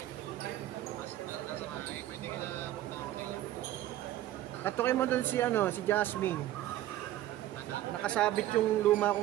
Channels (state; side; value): quieter; left; 13.9 dB